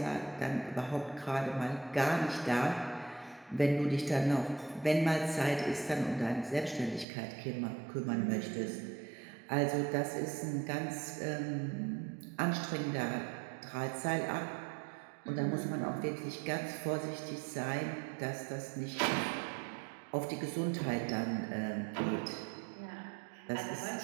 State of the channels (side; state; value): left; drops out; at 7.1 s